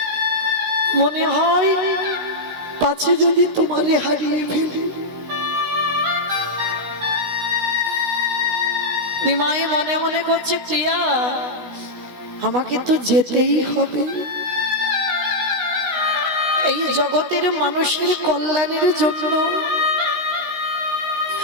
মনে হয় পাছে যদি তোমারে হারিয়ে ফেলি। নিমাই মনে মনে করছে, প্রিয়া আমাকে তো যেতেই হবে, এই জগতের মানুষের কল্যাণের জন্য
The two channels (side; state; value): left; late; 16 ms